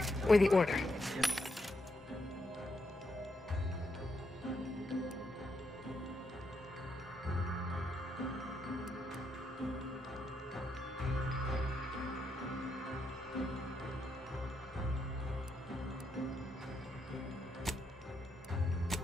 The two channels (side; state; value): both; normal; correlation 0.80